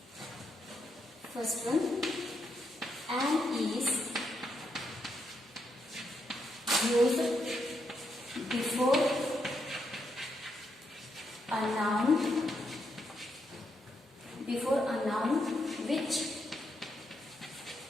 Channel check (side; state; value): both; normal; correlation 0.80